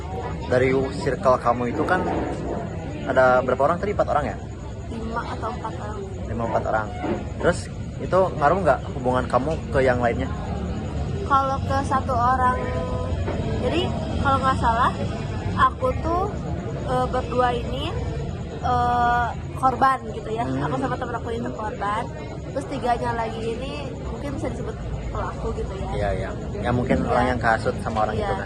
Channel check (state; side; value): identical; both; correlation 1.00